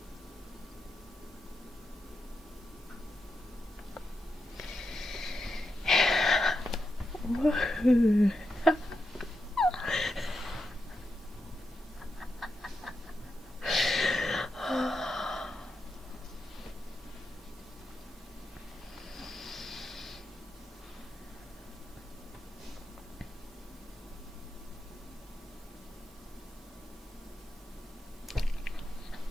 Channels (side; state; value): both; normal; correlation 0.86